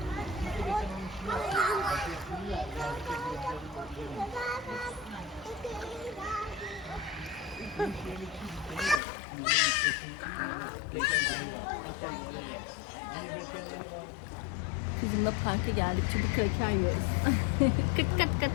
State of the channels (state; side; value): drops out; right; at 9.0 s